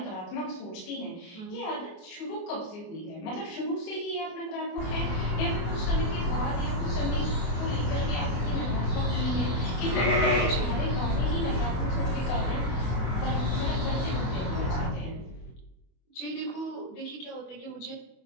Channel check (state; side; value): late; right; 24 ms